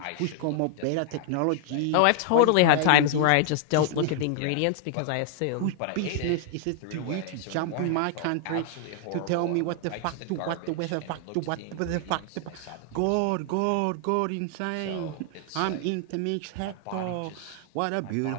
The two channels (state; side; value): different; both; correlation 0.00